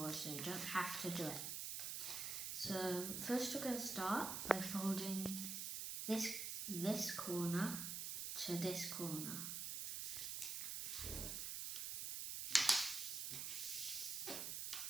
so you don't have to do it. So first we're going to start by folding this corner to this corner.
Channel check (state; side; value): noise; right; hiss, 2 dB below the sound